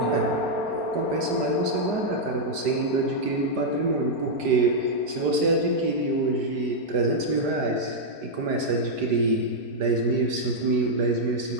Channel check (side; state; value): left; late; 4.9 ms